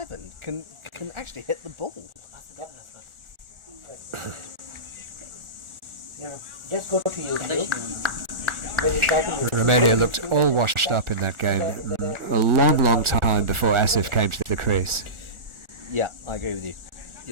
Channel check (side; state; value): left; late; 1.4 ms